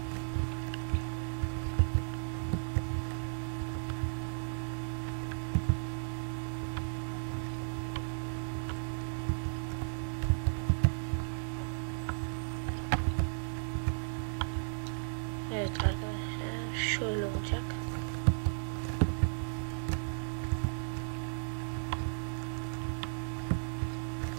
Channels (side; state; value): left; silent; 54 dB below the other